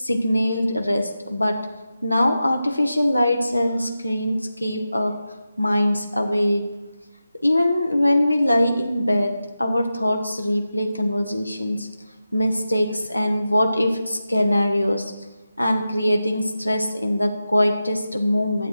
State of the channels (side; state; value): both; inverted; correlation -0.92